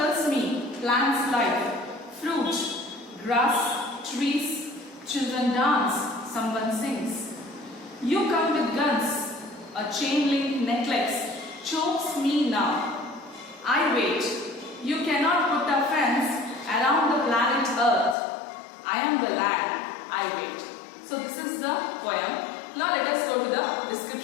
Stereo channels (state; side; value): drops out; right; at 18.2 s